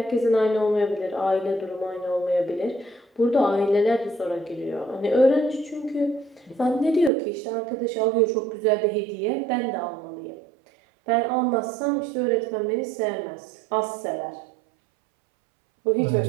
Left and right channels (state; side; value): drops out; left; at 7.1 s